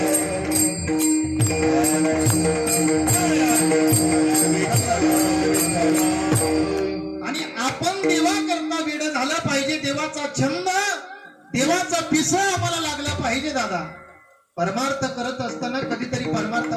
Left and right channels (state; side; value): identical; both; correlation 1.00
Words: आणि आपण देवा करता वेड झाला पाहिजे. देवाचा छंद, देवाचा पिसं आम्हाला लागला पाहिजे दादा. परमार्थ करत असताना कधीतरी